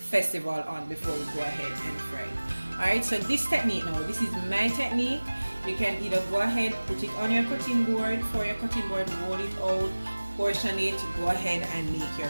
on before we go ahead and fry it. Alright, so this technique now, this is my technique. You can either go ahead, put it on your cutting board, for your cutting board, roll it out, portion it, go ahead and make your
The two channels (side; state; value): both; inverted; correlation -1.00